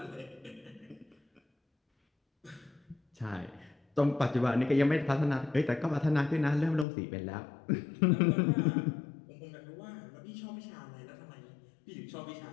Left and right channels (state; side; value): drops out; right; at 6.9 s